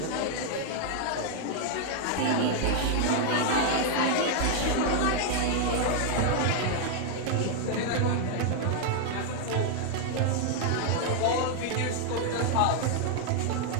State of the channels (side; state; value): both; different; correlation 0.00